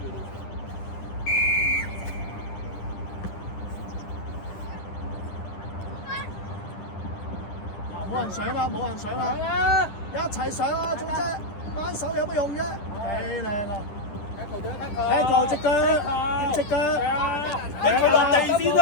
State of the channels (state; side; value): late; right; 10 ms